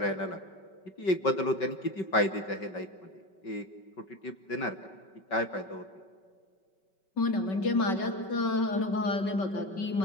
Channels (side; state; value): right; late; 5.3 ms